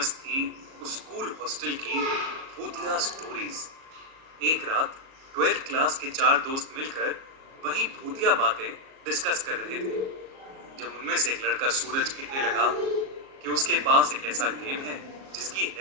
थी उस स्कूल हॉस्टल की भूतिया स्टोरीज। एक रात 12th क्लास के 4 दोस्त मिलकर वही भूतिया बातें डिस्कस कर रहे थे, जब उनमें से एक लड़का सूरज कहने लगा कि उसके पास एक ऐसा गेम है जिसकी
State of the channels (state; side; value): late; left; 37 ms